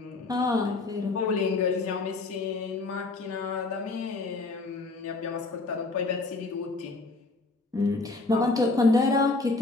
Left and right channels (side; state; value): right; quieter; 3.4 dB